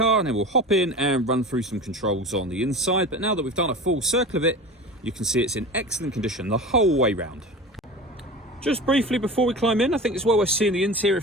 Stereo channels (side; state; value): both; normal; correlation 0.33